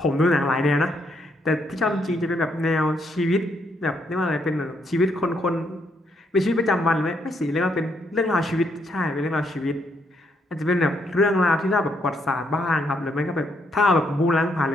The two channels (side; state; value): both; normal; correlation 0.74